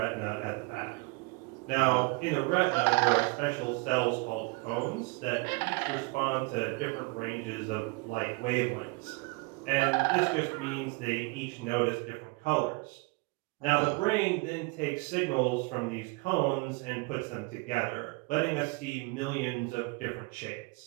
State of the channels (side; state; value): left; quieter; 28.1 dB